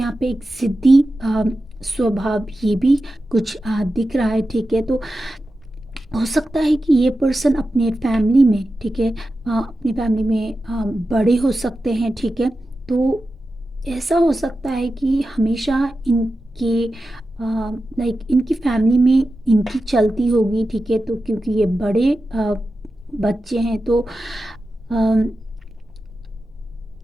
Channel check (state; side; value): normal; both; correlation 0.92